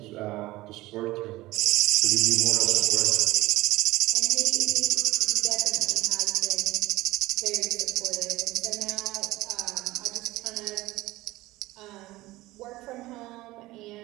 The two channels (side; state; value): left; quieter; 18.5 dB